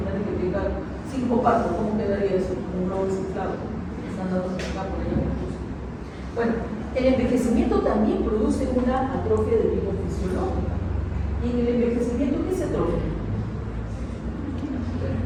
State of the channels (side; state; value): both; identical; correlation 1.00